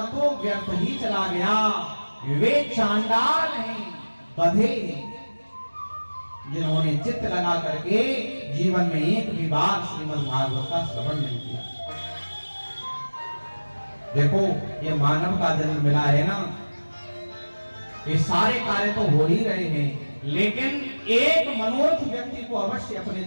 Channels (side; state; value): both; inverted; correlation -1.00